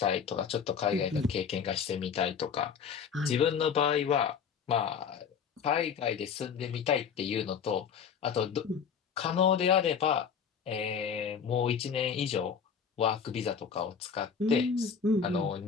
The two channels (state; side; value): quieter; right; 6.9 dB